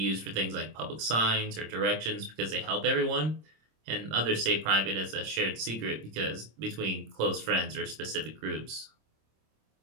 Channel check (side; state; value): left; late; 26 ms